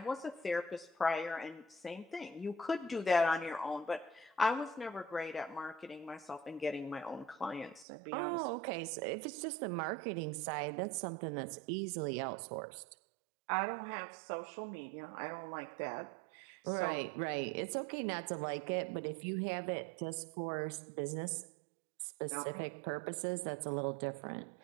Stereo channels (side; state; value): left; drops out; at 7.9 s